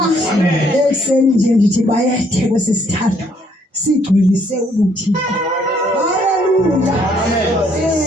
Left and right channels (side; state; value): both; normal; correlation 0.67